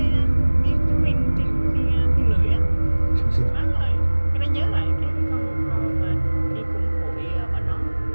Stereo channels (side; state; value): both; inverted; correlation -1.00